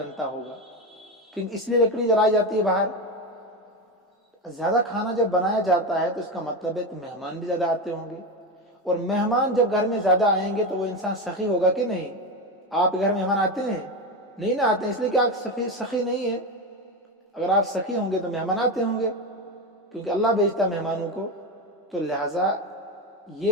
ہوگا، کیونکہ اس لیے لکڑی جلائی جاتی ہے باہر. زیادہ کھانا جب بنایا جاتا ہے تو اس کا مطلب ہے کہ مہمان بھی زیادہ آتے ہوں گے، اور مہمان جب گھر میں زیادہ آئیں گے تو وہ انسان سخی ہوگا کہ نہیں؟ آپ کے گھر مہمان آتے ہیں؟ نہیں نہ آتے ہیں، اس لیے کہ آپ سخی نہیں ہے. اگر آپ سخی ہوں گے تو مہمان آتے ہوں گے، کیونکہ اللہ بھیجتا ہے مہمانوں کو. تو لہٰذا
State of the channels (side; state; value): both; normal; correlation 0.17